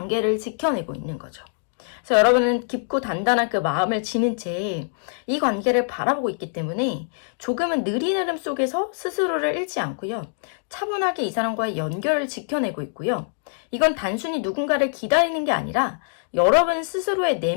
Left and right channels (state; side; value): silent; right; digital silence